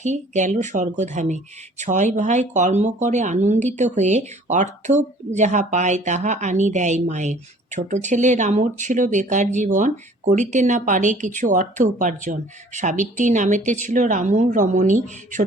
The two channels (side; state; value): both; normal; correlation 0.53